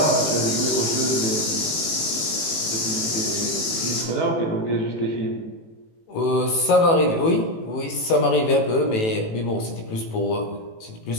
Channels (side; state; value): right; late; 18 ms